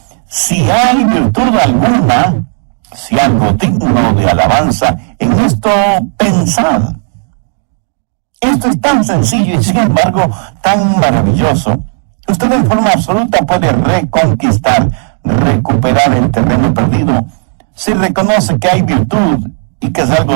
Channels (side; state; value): left; silent; 59 dB below the other